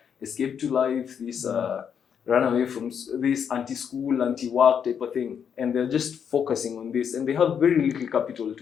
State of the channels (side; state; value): right; quieter; 7.7 dB